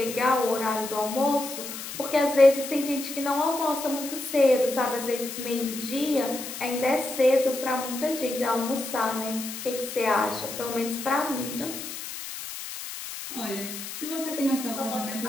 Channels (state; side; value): noise; left; hiss, 9 dB below the sound